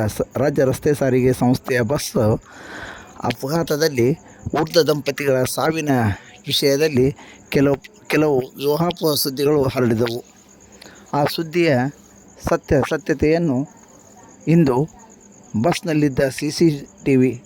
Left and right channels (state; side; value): identical; both; correlation 1.00